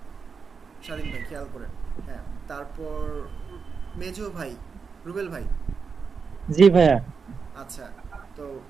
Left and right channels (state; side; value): quieter; left; 5.5 dB